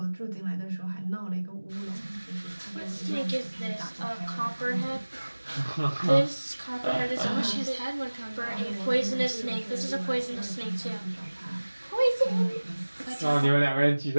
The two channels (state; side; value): inverted; both; correlation -1.00